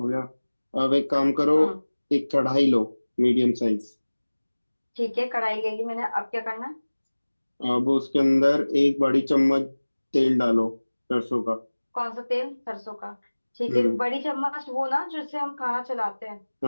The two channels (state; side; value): inverted; both; correlation -1.00